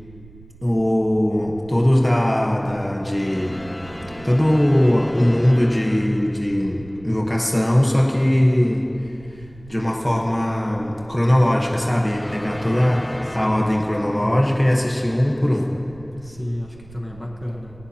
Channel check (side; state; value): right; noise; rumble, 23 dB below the sound